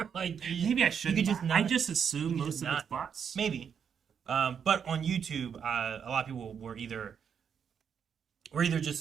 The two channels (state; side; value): quieter; left; 7.4 dB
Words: I should. I just assume most of not, it's bots. Maybe, but on YouTube, a lot of people were either